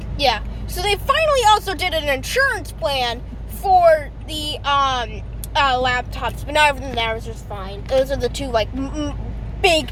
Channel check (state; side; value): identical; both; correlation 1.00